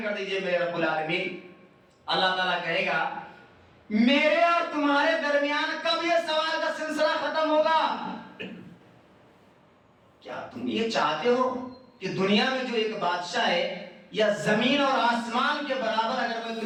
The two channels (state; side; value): identical; both; correlation 1.00